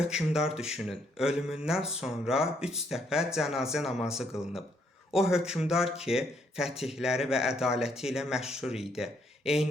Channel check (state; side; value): normal; both; correlation 0.72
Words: düşünün, ölümündən sonra 3 dəfə cənazə namazı qılınıb. O hökmdar ki, fətihləri və ədaləti ilə məşhur idi.